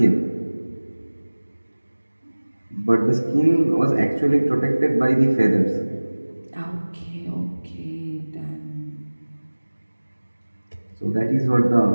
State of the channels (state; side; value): inverted; both; correlation -1.00